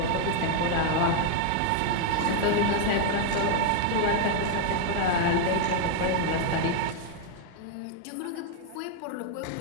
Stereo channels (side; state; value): both; different; correlation 0.00